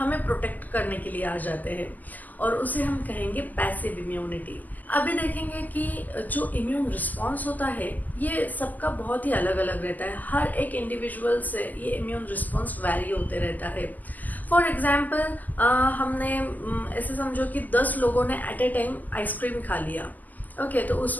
प्रोटेक्ट करने के लिए आ जाते हैं और उसे हम कहेंगे पैसिव इम्यूनिटी। अभी देखेंगे कि जो इम्यून रिस्पॉन्स होता है ये सबका बहुत ही अलग अलग रहता है। हर एक इंडिविजुअल से ये इम्यून रिस्पॉन्स वैरी होते रहता है। फॉर एग्जाम्पल हमने ऐसे समझो कि 10 लोगों ने एट ए टाइम आइसक्रीम खा लिया। ओके, तो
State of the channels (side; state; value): right; late; 0.082 ms